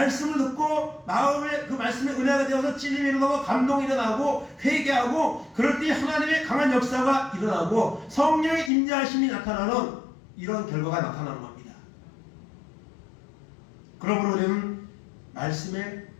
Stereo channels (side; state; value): right; drops out; at 8.7 s